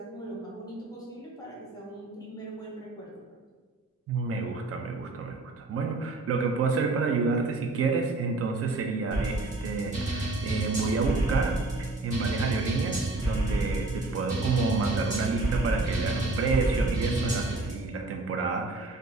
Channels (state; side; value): quieter; left; 3.1 dB